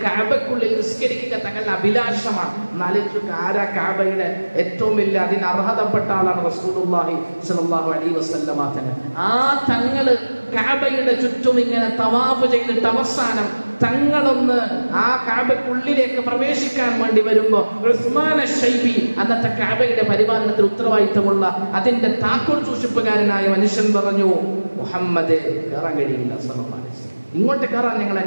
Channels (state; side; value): inverted; both; correlation -1.00